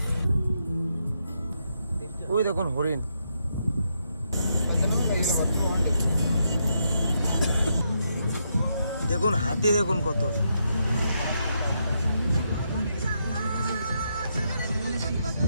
ওই দেখুন হরিণ, দেখুন হাতি, দেখুন কত।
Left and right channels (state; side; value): inverted; both; correlation -0.80